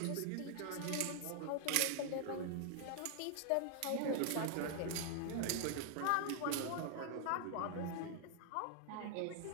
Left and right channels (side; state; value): both; different; correlation 0.00